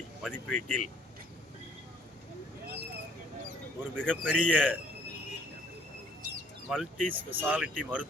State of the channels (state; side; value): normal; both; correlation 0.60